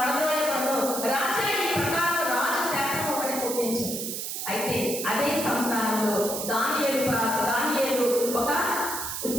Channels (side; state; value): right; noise; hiss, 4 dB below the sound